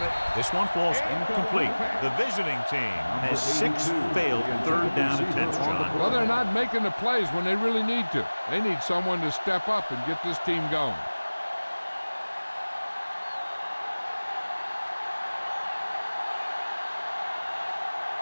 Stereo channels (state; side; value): inverted; both; correlation -1.00